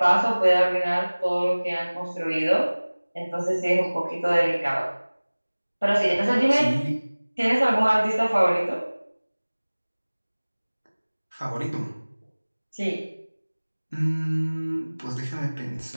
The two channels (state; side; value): inverted; both; correlation -1.00